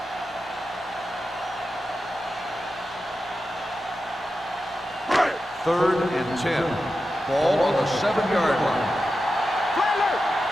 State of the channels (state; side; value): normal; both; correlation 0.91